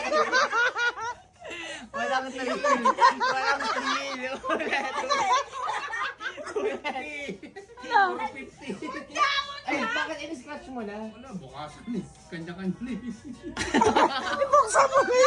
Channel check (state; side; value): identical; both; correlation 1.00